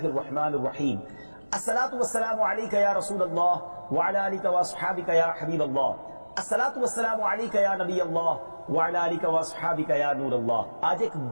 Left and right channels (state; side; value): inverted; both; correlation -1.00